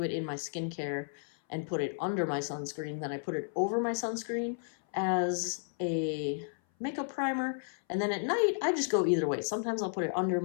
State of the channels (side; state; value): right; silent; 56 dB below the other